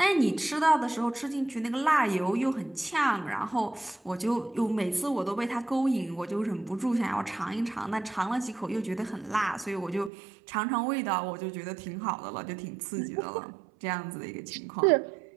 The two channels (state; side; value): drops out; left; at 10.1 s